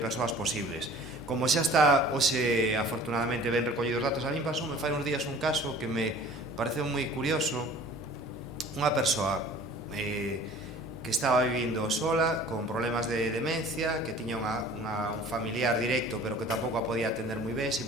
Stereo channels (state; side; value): normal; both; correlation 0.47